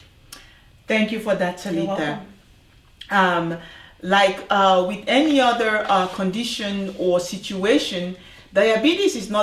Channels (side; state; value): both; identical; correlation 1.00